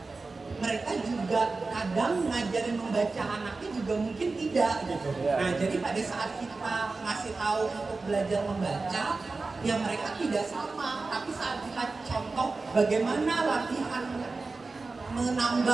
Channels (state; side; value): quieter; left; 3.8 dB